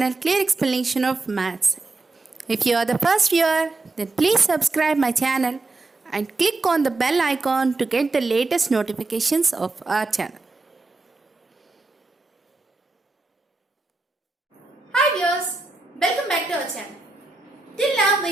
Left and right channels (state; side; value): quieter; left; 3.4 dB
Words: Clear Explanation of Maths. If you are the first viewer, then please subscribe my channel and click on the bell icon to get the latest notifications of our channel. Hi viewers, welcome back to our channel. Till now